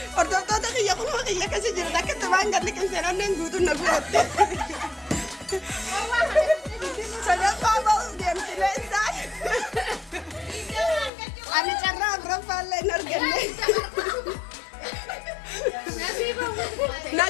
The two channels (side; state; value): right; drops out; at 11.1 s